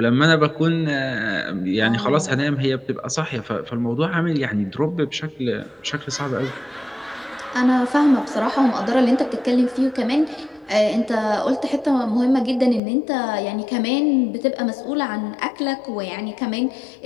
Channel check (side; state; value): right; drops out; at 12.8 s